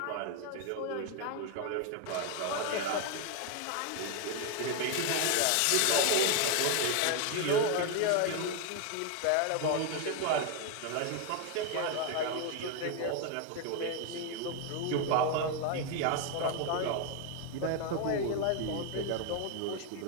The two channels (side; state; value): both; different; correlation 0.01